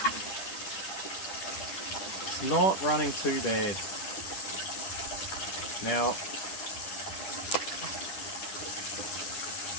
It's not running too bad. Now,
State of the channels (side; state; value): right; late; 10 ms